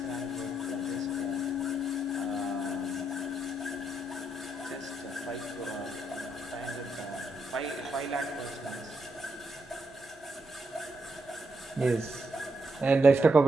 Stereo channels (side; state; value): both; normal; correlation 0.80